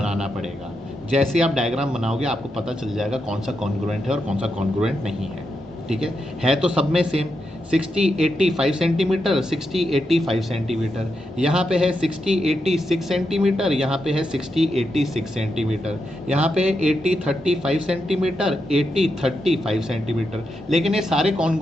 पड़ेगा। जैसे आप डायग्राम बनाओगे आपको पता चल जाएगा कौन सा कॉन्ग्रुएंट है और कौन सा कॉन्ग्रुएंट नहीं है। ठीक है तो सब में सेम 60 80 5 सेंटीमीटर, 60 80 5 सेंटीमीटर, यहाँ पे है 60 80 6 सेंटीमीटर, यहाँ पे है 60 80 6 सेंटीमीटर, यहाँ पे है 80 30 5 सेंटीमीटर, 80 30 5 सेंटीमीटर। लेकिन ये सारे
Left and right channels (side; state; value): both; normal; correlation 0.85